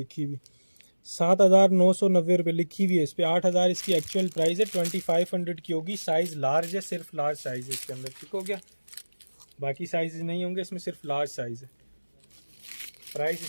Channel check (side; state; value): both; inverted; correlation -1.00